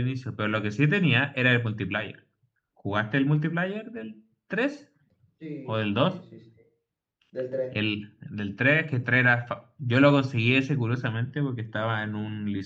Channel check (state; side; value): identical; both; correlation 1.00